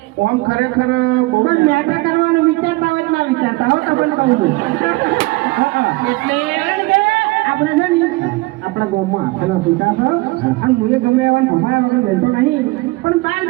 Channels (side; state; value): left; quieter; 22.2 dB